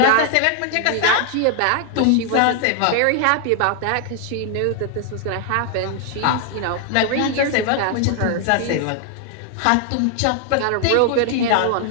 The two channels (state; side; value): different; both; correlation 0.00